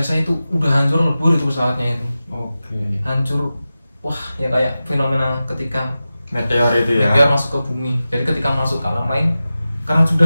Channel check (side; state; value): both; inverted; correlation -0.94